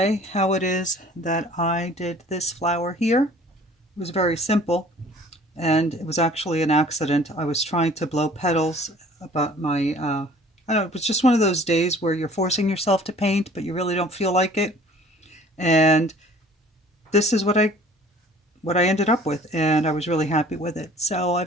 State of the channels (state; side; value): normal; both; correlation 0.51